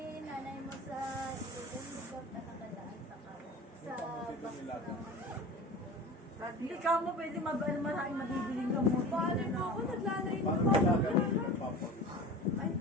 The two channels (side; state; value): both; normal; correlation 0.35